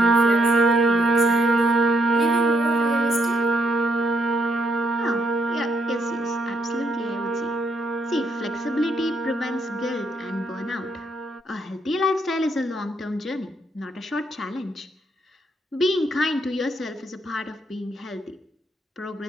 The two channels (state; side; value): normal; both; correlation 0.75